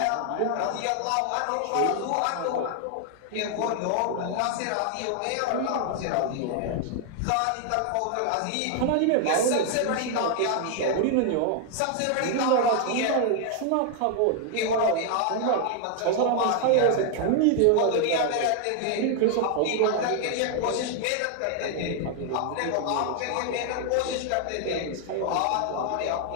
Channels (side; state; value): both; different; correlation 0.00